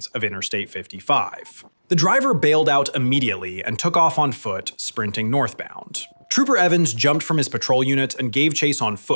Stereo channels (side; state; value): both; inverted; correlation -1.00